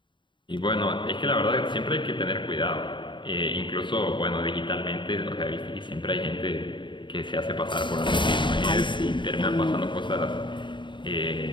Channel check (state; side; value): late; right; 0.23 ms